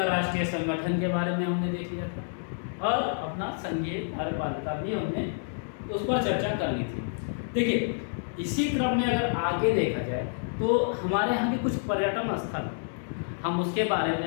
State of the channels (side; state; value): right; silent; digital silence